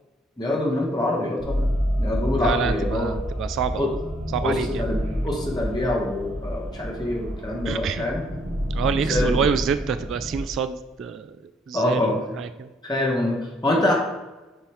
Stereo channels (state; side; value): normal; both; correlation 0.67